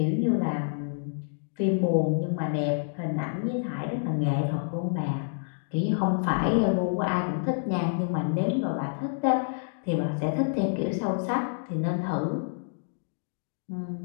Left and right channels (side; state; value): right; silent; digital silence